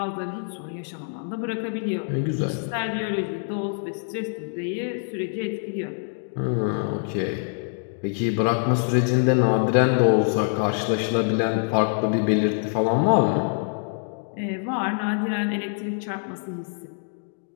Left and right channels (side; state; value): right; silent; 62 dB below the other